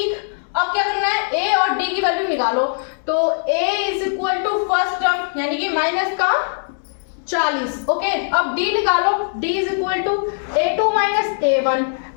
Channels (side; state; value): right; silent; digital silence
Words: अब क्या करना है, ए और डी की वैल्यू निकालो। तो a is equal to first term यानी कि माइनस का 40, ओके। अब d निकालो, d is equal to a2 minus a1,